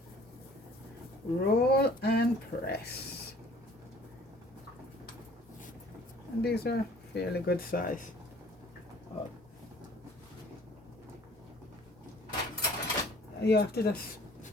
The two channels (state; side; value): normal; both; correlation 0.53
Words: Roll and press. And these are fairly good size. You have to just